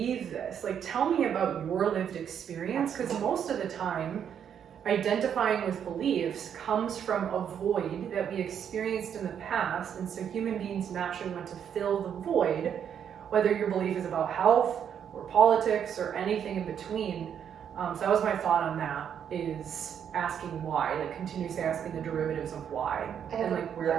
this? Like, tell me about your lived experience, because most of the time, identifying with beliefs comes from a void that we experienced in the past, and so human beings naturally want to fill the void, whether your belief is about health or politics or anything in between. So that was my thought on that, is asking why, like continuously asking the derivatives of why, and like where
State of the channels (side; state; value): left; quieter; 8.5 dB